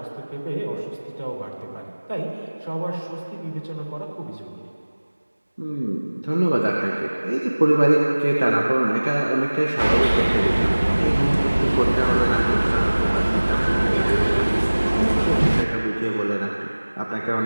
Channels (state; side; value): inverted; both; correlation -1.00